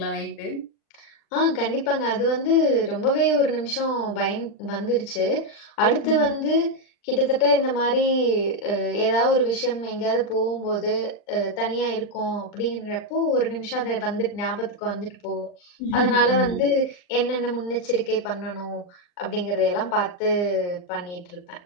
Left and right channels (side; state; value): right; late; 39 ms